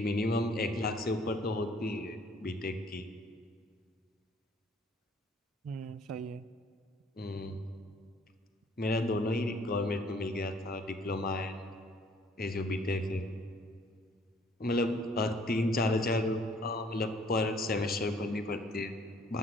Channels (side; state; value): both; normal; correlation 0.60